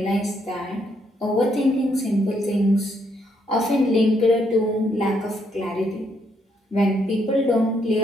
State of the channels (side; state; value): both; normal; correlation 0.74